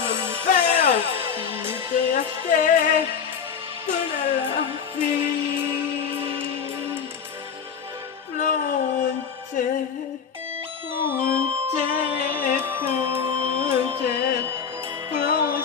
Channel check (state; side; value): quieter; right; 6.8 dB